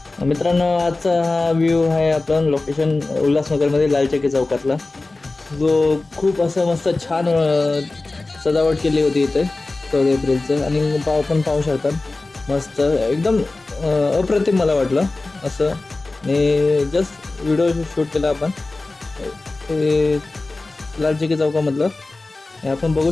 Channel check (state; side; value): quieter; right; 3.2 dB